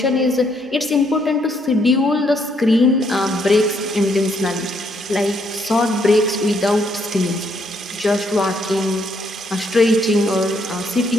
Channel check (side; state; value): both; normal; correlation 0.72